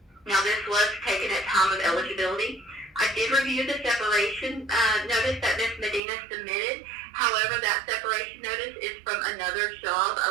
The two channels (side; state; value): left; drops out; at 6.0 s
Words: Now, this was taken at time of eligibility. I did review the separation notice that Ms. Medina submitted. However, that separation notice is from another job,